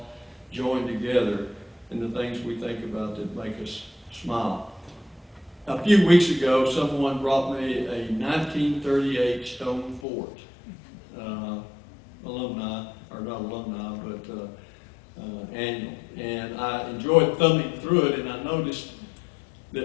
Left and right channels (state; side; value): drops out; right; at 10.0 s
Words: joined together in the things we think about that make us smile. A few weeks ago, someone brought me a 1938 stone fort, alumni, or not alumni, but annual. And I enjoyed thumbing through it, and I noticed